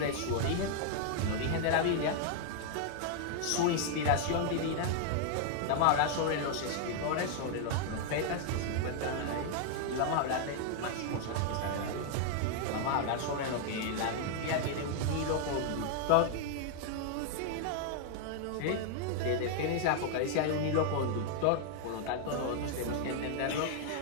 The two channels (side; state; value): both; different; correlation 0.00